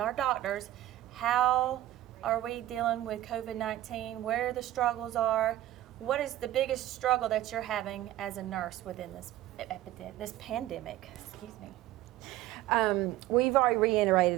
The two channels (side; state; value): left; quieter; 14.4 dB